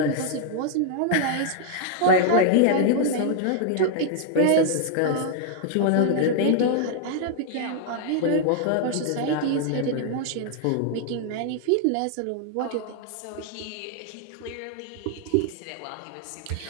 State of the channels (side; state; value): both; different; correlation -0.01